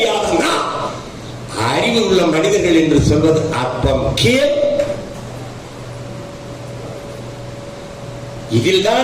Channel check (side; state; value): both; identical; correlation 1.00